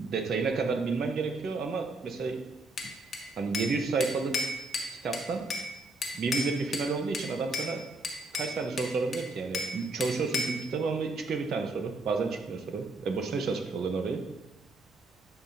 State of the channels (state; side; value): quieter; left; 3.0 dB